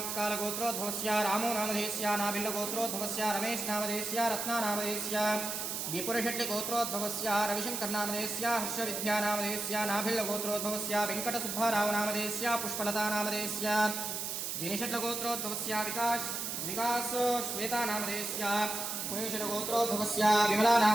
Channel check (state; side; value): noise; right; hiss, 3 dB below the sound